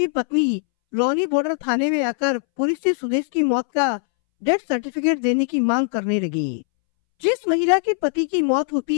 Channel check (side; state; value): right; silent; 64 dB below the other